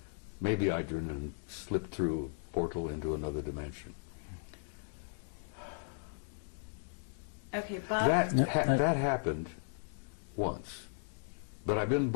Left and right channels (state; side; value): silent; right; digital silence